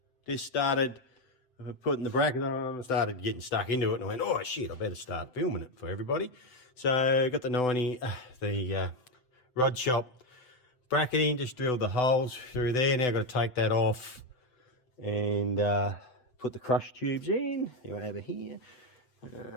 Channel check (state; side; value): late; right; 8.0 ms